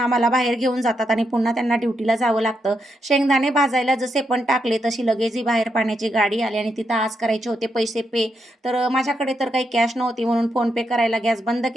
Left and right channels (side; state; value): both; normal; correlation 0.82